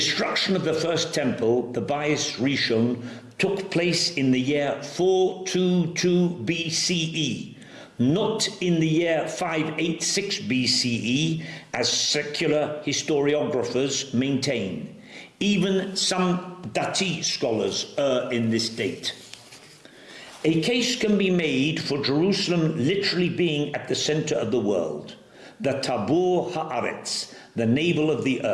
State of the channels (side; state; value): both; identical; correlation 1.00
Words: of the first temple, the Bayis Rishon, took place in the year 422 BCE, not in the year 586 BCE, as secular historiographers maintain. Even some Dati scholars err in this date. A case can be made for Jerusalem literally being at the center of the world, the Tabur Haaretz, the navel of the